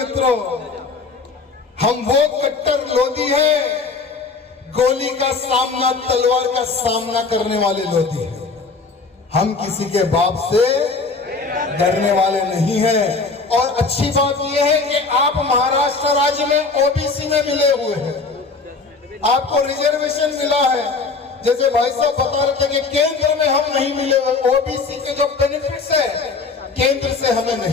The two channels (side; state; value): right; quieter; 4.2 dB